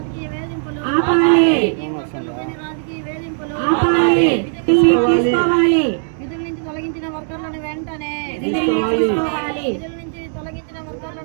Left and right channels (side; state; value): left; silent; 67 dB below the other